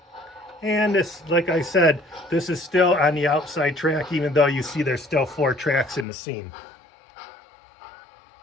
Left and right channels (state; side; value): drops out; right; at 6.1 s